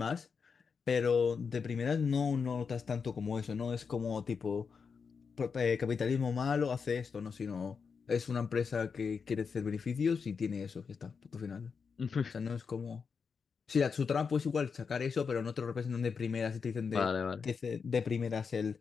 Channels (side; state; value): right; quieter; 5.7 dB